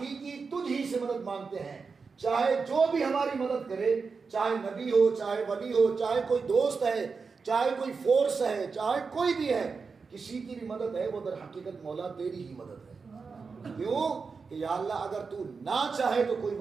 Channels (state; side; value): quieter; left; 4.9 dB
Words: تجھ ہی سے مدد مانگتے ہیں، چاہے جو بھی ہماری مدد کرے، چاہے نبی ہو، چاہے ولی ہو، چاہے کوئی دوست ہے، چاہے کوئی فورس ہے، چاہے کوئی بھی ہے، کسی کی بھی مدد ہے وہ در حقیقت مولا تیری ہی مدد ہے۔ کیوں کہ یا اللہ اگر تو نہ چاہے تو کوئی